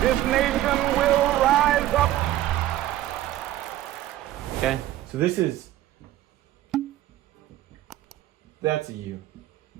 This nation will rise up. Okay, so that's a you.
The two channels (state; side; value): quieter; left; 14.2 dB